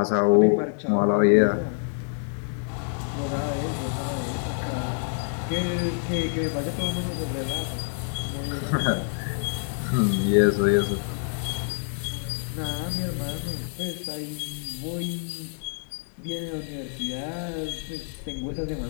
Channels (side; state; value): right; silent; 60 dB below the other